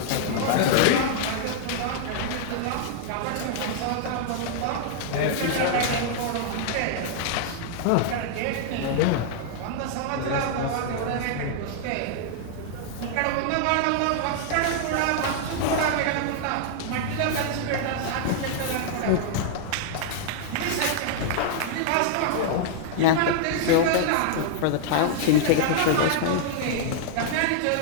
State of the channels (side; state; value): both; different; correlation -0.01